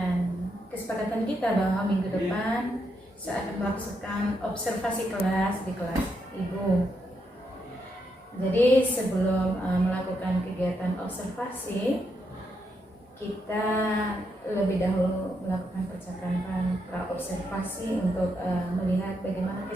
kesepakatan kita bahwa minggu depan saya akan melakukan observasi kelas di kelas Ibu. Jadi sebelum melakukan kegiatan observasi, kita lebih dahulu melakukan percakapan pra-observasi untuk melihat bagaimana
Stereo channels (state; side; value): normal; both; correlation 0.80